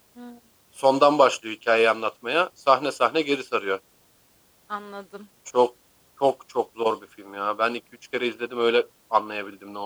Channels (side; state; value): both; identical; correlation 1.00